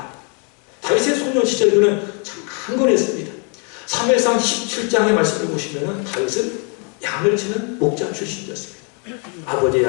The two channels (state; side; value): quieter; right; 37.9 dB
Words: 다윗의 소년 시절 그는 참 강건했습니다. 사무엘상 17장의 말씀을 보시면 다윗은 양을 치는 목자 출신이었습니다. 아버지